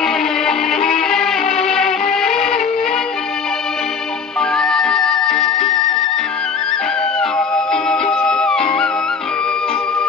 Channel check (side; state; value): right; quieter; 5.6 dB